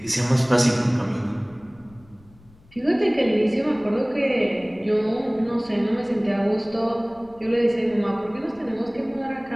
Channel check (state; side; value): noise; left; rumble, 27 dB below the sound